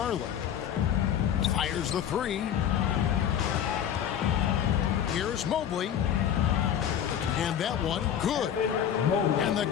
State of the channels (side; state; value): right; quieter; 9.4 dB